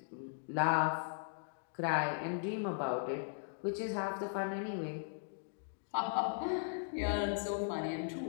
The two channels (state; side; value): silent; right; digital silence